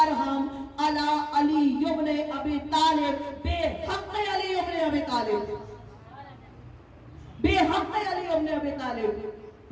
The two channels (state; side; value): identical; both; correlation 1.00